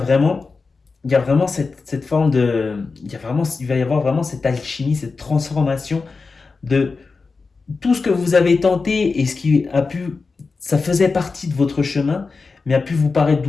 cette forme de, il va y avoir vraiment cette alchimie, cette transformation de tout ce que vous avez tenté et ce qui a pu, ça faisait partie de votre chemin, mais a pu vous paraître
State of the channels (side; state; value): right; quieter; 4.3 dB